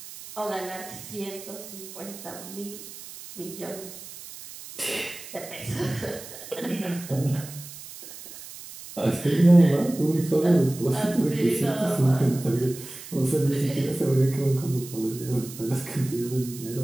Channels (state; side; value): noise; right; hiss, 14 dB below the sound